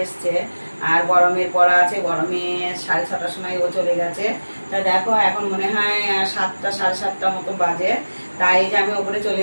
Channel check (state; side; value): inverted; both; correlation -1.00